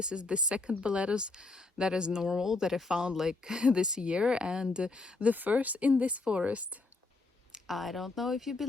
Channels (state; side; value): quieter; right; 3.4 dB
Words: is the second Boletus that is normal that I found like this year, and the first in this forest. I don't know if you